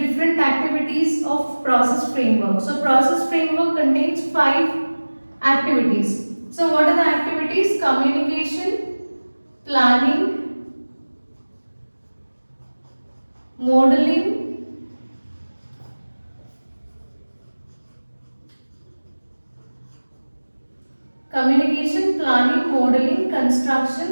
activities of process framework. So process framework contains 5 activities. So what are the activities? Communication, planning, modeling, communication, planning, modeling,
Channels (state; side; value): inverted; both; correlation -1.00